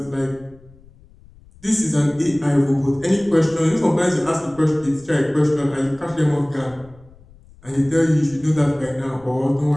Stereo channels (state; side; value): noise; left; rumble, 25 dB below the sound